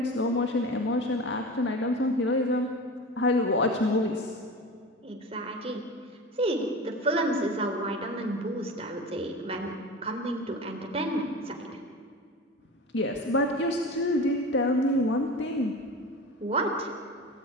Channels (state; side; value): normal; both; correlation 0.31